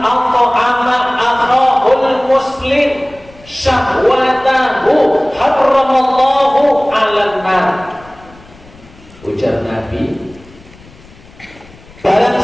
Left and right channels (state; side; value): noise; left; rumble, 24 dB below the sound